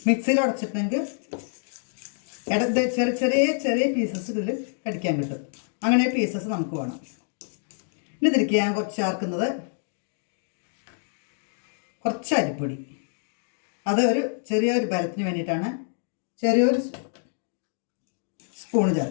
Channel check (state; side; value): silent; right; digital silence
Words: മിക്സിയിൽ ഉടച്ചിട്ടുണ്ടെങ്കിൽ ചെറിയ ചെറിയ ചെറിയ പീസസ് ഇതിൽ കടിക്കാൻ കിട്ടും. അങ്ങനെ പീസസ് നമുക്ക് വേണം. ഇനി ഇതിലേക്ക് ഞാൻ കുറച്ച് ചേർക്കുന്നത് കുറച്ച് അരിപ്പൊടി. അത് ചെറിയൊരു ബലത്തിന് വേണ്ടിയിട്ടാണ്. ചെറിയൊരു സ്പൂണ്